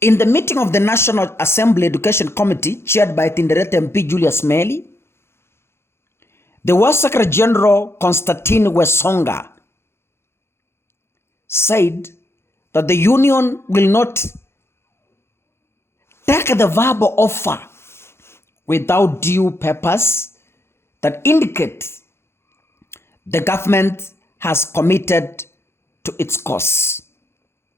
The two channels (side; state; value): right; late; 0.12 ms